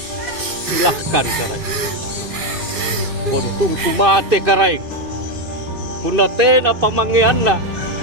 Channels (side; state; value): left; late; 2.6 ms